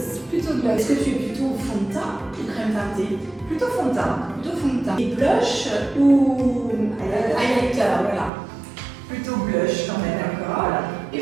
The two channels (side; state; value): left; drops out; at 8.3 s